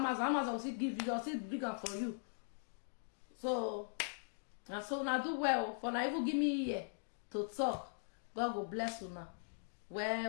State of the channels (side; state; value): right; silent; digital silence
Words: Amazon will see give you, you'll see bigger for you. So now do well. For now, even give me here to talk. God will bless you now.